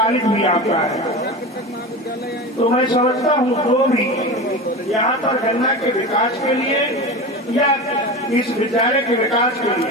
भी आपका है। तो मैं समझता हूँ जो भी यहाँ पर गन्ना के विकास के लिए या इस विद्यालय के विकास के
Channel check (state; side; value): normal; both; correlation 0.27